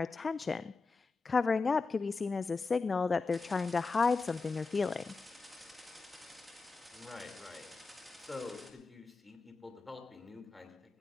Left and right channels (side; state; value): right; quieter; 4.2 dB